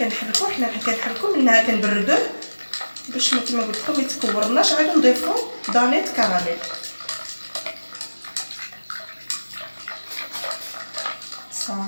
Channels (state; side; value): inverted; both; correlation -1.00